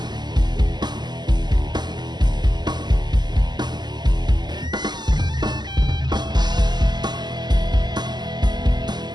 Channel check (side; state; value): left; late; 0.21 ms